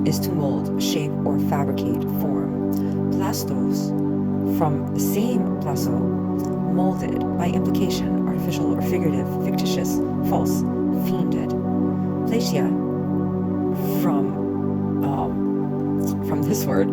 is to mold, shape, or fabricate, form. Plastos, from the same plaso, molded, by implication, artificial or figurative, fictitious, false, fiended. Platia, from this word,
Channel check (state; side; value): identical; both; correlation 1.00